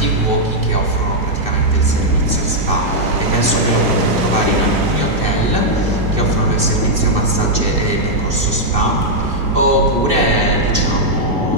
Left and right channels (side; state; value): left; late; 2.6 ms